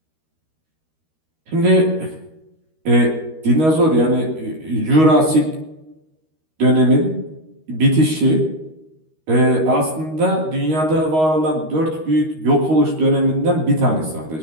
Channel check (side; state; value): left; late; 13 ms